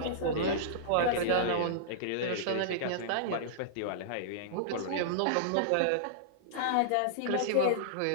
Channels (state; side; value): different; both; correlation -0.02